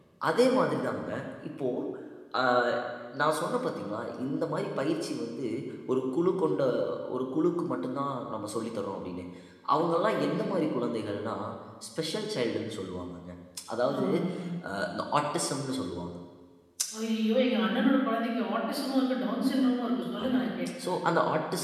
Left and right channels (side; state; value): both; identical; correlation 1.00